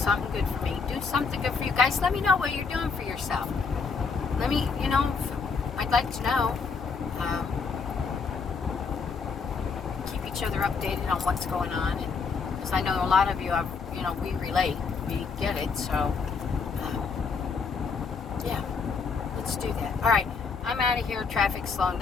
good for me. Do something good for you guys. Let me know what you're doing for yourself. Let me, you know, I'd like to know. Keep each other updated on what's going on. Because I know a lot of you have, you know, we relate. We get it. So, yeah. Let's do that. All right. I'm out of here. Traffic's slowing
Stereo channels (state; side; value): quieter; right; 5.2 dB